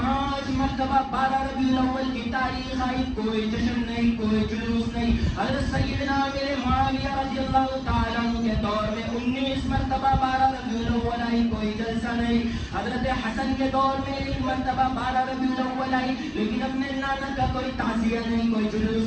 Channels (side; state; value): both; identical; correlation 1.00